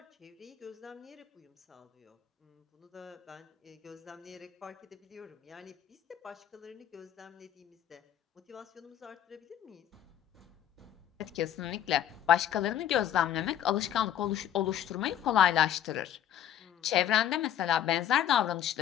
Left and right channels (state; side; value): quieter; right; 10.5 dB